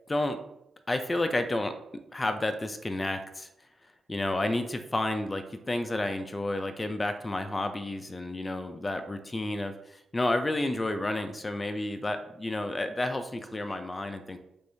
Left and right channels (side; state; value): both; normal; correlation 0.94